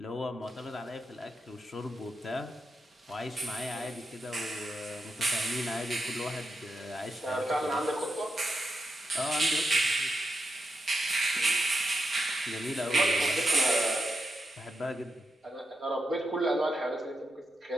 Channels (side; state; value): both; normal; correlation 0.86